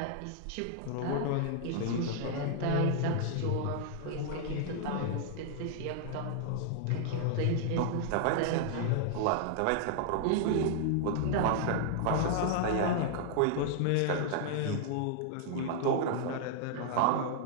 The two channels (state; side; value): different; both; correlation 0.00